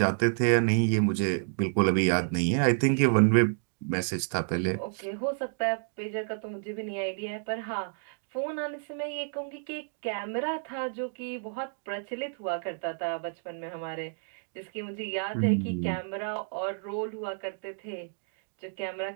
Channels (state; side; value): silent; left; digital silence